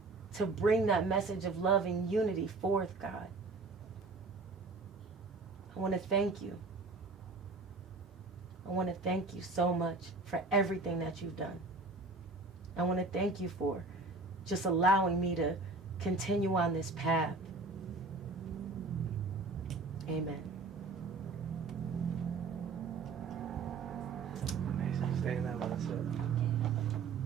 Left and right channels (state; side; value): quieter; left; 3.7 dB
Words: to bring that message of love and unity forth, God. I want to thank you. I want to thank you so much for everything that you've done. I want to thank you for just allowing me to continue on this path. Amen. Amazing. Stay in that mindset.